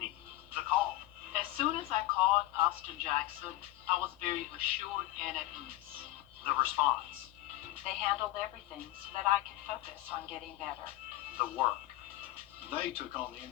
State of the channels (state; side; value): quieter; right; 17.0 dB